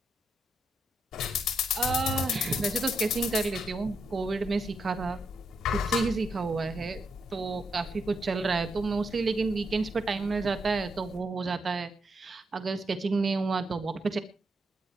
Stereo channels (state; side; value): normal; both; correlation 0.80